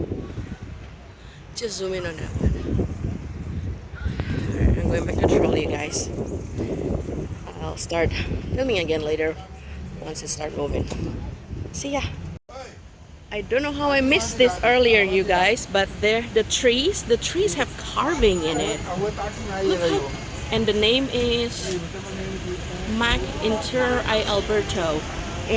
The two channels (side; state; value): both; identical; correlation 1.00